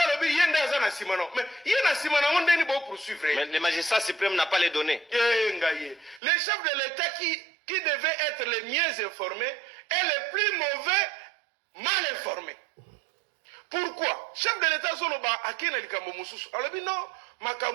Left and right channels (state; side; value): drops out; left; at 6.2 s